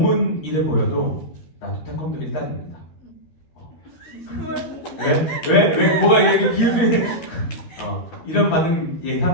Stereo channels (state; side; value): late; right; 13 ms